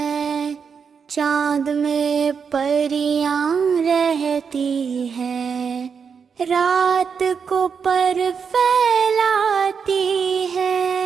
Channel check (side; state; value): left; quieter; 6.3 dB